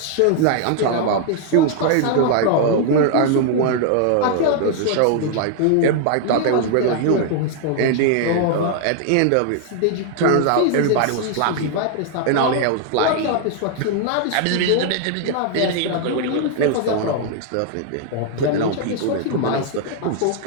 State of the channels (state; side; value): different; both; correlation 0.00